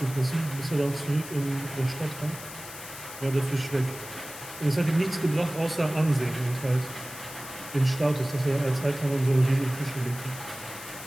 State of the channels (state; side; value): noise; left; hiss, 13 dB below the sound